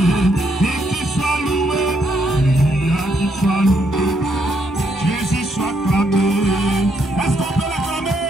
Et qu'il soit loué. Alléluia, qu'il soit loué. Jésus soit clamé. Est-ce qu'on peut l'acclamer?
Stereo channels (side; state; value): both; normal; correlation 0.75